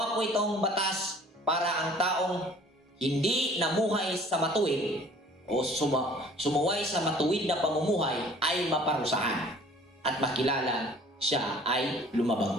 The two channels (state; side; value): normal; both; correlation 0.51